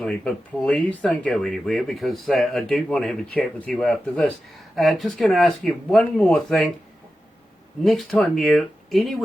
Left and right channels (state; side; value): normal; both; correlation 0.92